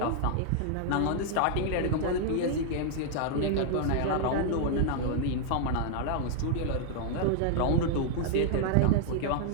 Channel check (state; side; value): different; both; correlation 0.00